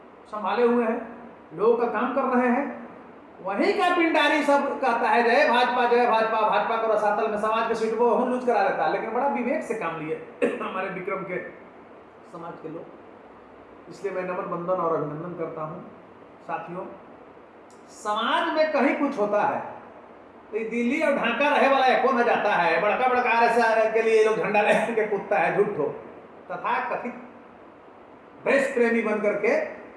संभाले हुए हैं, लोगों का काम कर रहे हैं। वहीं का पिंडारी सब कहता है जय भाजपा जय भाजपा, भाजपा को रसातल में समाज के सीट को हम लूज करा लेता है, लेकिन बड़ा विवेक से काम लिए हमारे विक्रम के समाज के लोग। इसलिए मैं नमन बंदन और अभिनंदन करता हूं। साथियों, समाज में कहीं कुछ होता है तो दिल्ली और ढाका रहे वाला एको न जाता है, बड़का RSS के लिए लोग झंडा लेके कूदता है, झूठो तथा कथित देश प्रेमी बन करके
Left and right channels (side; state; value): both; identical; correlation 1.00